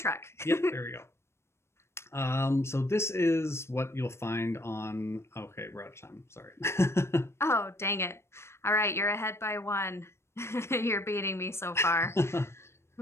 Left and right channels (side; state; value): right; late; 0.13 ms